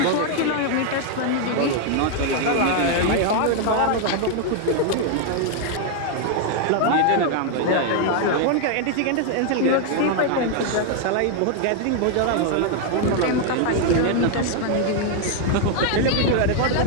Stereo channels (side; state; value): both; different; correlation 0.00